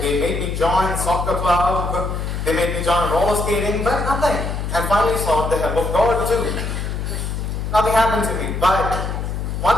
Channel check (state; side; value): noise; left; hum, 3 dB below the sound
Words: made me join soccer club, they made me join roller skating, but nothing. And finally sought the help of God too. Nothing happened to me, but